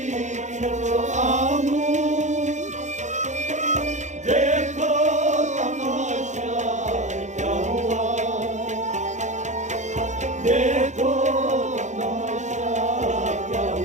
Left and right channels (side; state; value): left; late; 0.34 ms